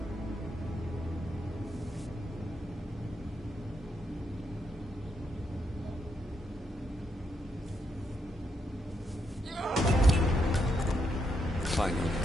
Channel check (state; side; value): normal; both; correlation 0.80